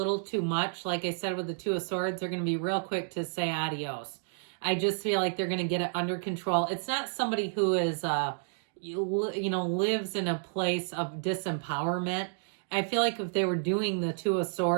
too much, like I said with the Two of Swords, they're going to be real quick to say adios. I just feel like they're going to get it under control. It's not somebody who is, lives in a place of disempowerment. I feel like if they were doing the Two of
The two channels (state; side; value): silent; left; digital silence